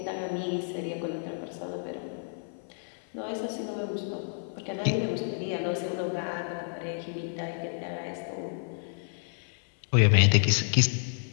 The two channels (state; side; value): silent; right; 58 dB below the other